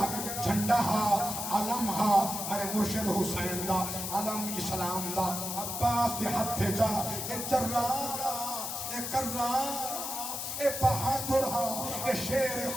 جھنڈا ہا علم ہا میرے مرشد حسین دا علم اسلام دا عباس دے ہتھے جا اے جرارا اے کرارا اے بہادر ہا اے شیر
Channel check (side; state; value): left; noise; hiss, 4 dB below the sound